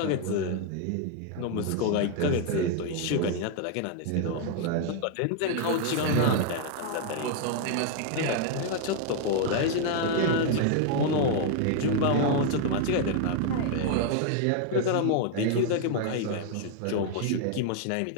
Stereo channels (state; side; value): different; both; correlation 0.00